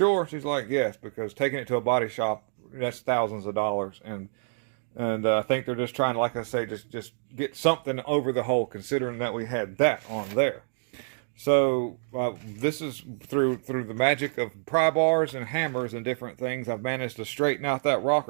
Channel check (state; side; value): silent; left; digital silence